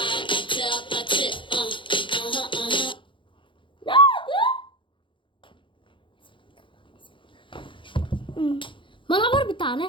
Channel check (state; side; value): late; right; 0.24 ms